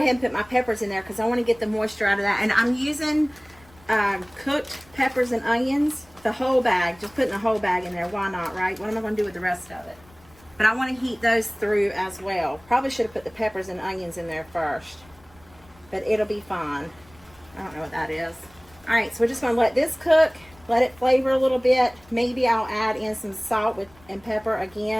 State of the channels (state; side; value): noise; left; rumble, 27 dB below the sound